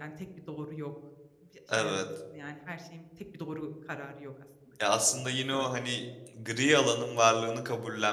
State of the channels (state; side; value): identical; both; correlation 1.00